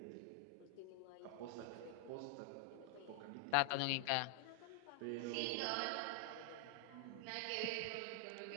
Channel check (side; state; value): both; different; correlation 0.00